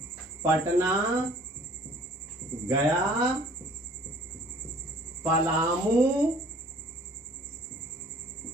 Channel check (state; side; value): normal; both; correlation 0.53